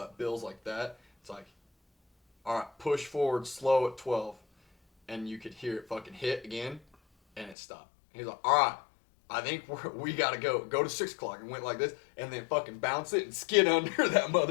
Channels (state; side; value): drops out; right; at 7.6 s